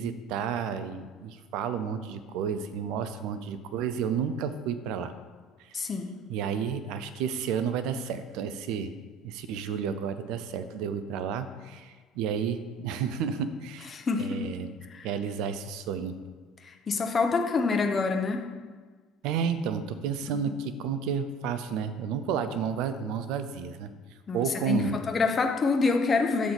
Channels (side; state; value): both; normal; correlation 0.47